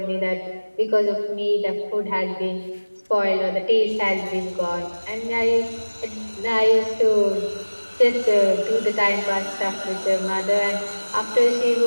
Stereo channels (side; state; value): both; inverted; correlation -1.00